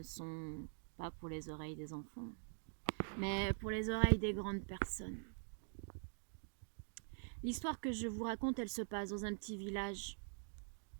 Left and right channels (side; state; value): left; silent; digital silence